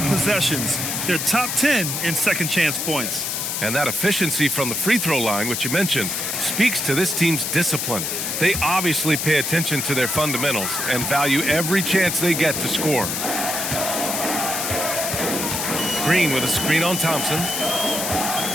possessions. They're top 10 in second chance points. And that efficiency from the free throw line, which you mentioned, speaks to this team's discipline. They obviously pay attention to their fundamentals and value every chance they get to score. Green with a screen on Thompson.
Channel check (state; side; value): noise; left; hiss, 2 dB below the sound